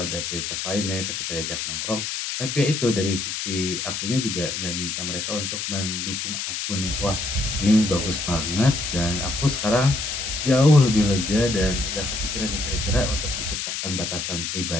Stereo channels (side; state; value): left; noise; hiss, 3 dB below the sound